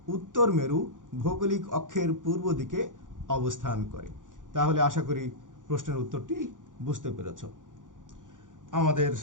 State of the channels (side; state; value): left; late; 0.88 ms